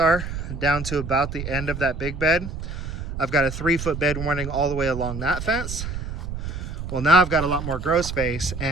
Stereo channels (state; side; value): noise; right; rumble, 6 dB below the sound